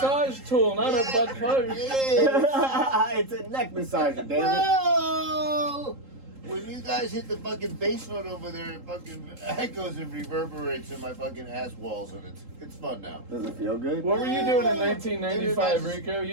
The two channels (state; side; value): late; left; 3.8 ms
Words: tool, not a butt plug. Yeah. It's a neck massager, damn it. Well, when you guys hit the fucking bass note over there, it fucking echoes and reverberates in my fucking ass walls, and it's fun now. Does it feel good? What were you doing in 1995, Rico?